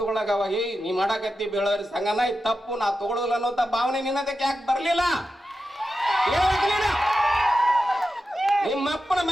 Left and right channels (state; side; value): normal; both; correlation 0.91